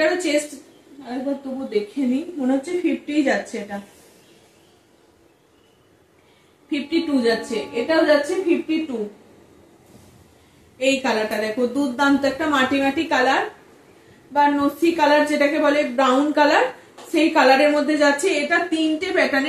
চেস্ট একবার তবু দেখে নি, মনে হচ্ছে 50 যাচ্ছে, এটা 52 যাচ্ছে, এটাও যাচ্ছে 52। এই কালারটা দেখো, দুর্দান্ত একটা মাটি মাটি কালার বা নসি কালার যেটাকে বলে, ব্রাউন কালার, সেই কালারের মধ্যে যাচ্ছে। এটা তিনটে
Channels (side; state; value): both; identical; correlation 1.00